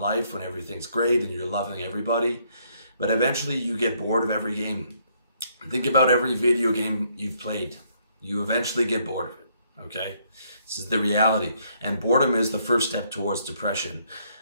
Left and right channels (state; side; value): inverted; both; correlation -0.70